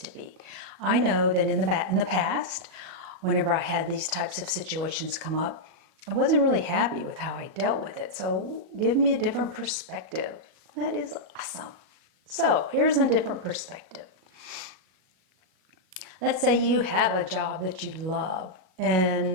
be. I know that in the past, whenever I had these types of situations come up, I wasn't really happy with how I dealt with it. So give me a different perspective. That is awesome. So here's a different perspective. Let's say you have a job that you love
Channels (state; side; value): late; left; 38 ms